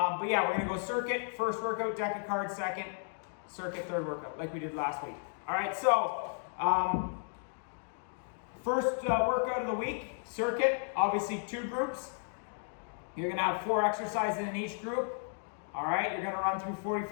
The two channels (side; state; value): right; silent; 55 dB below the other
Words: yeah, we're gonna go circuit, first workout, deck of cards, second, circuit, third workout, like we did last week. All right, so first workout of the week, circuit, obviously two groups. You're gonna have 4 exercises in each group. All right, you're gonna run through